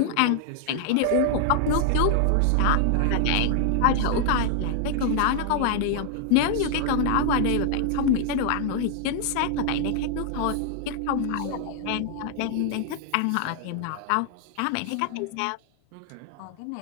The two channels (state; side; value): different; both; correlation 0.00